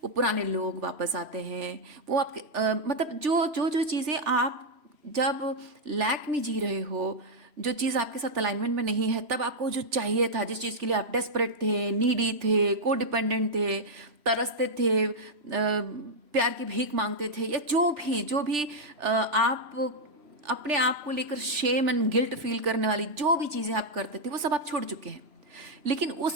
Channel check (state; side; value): late; left; 3.0 ms